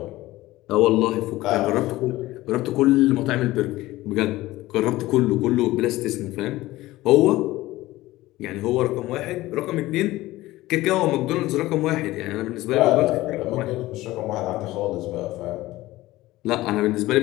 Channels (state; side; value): quieter; right; 17.6 dB